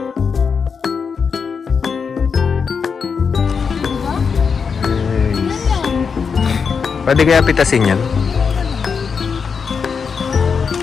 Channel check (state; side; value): quieter; right; 5.9 dB